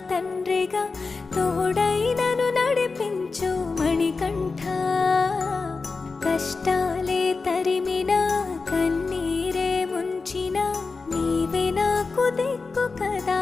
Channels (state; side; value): quieter; right; 4.2 dB